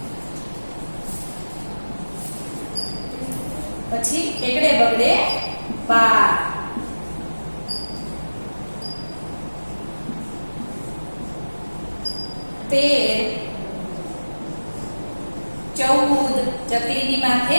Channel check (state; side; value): inverted; both; correlation -1.00